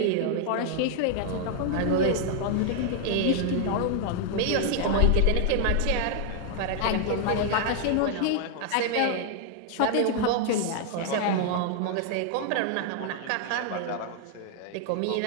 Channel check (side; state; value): both; different; correlation 0.00